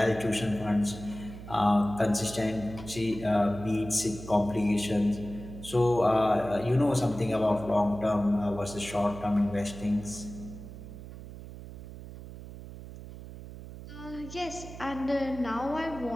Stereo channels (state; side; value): noise; right; hum, 13 dB below the sound